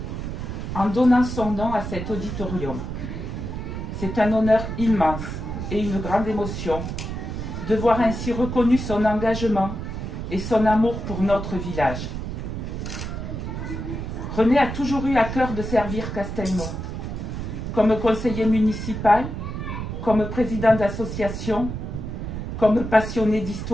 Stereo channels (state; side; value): noise; right; rumble, 5 dB below the sound